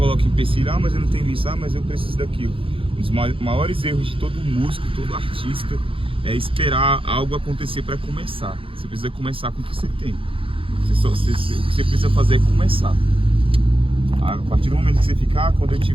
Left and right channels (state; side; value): late; left; 0.26 ms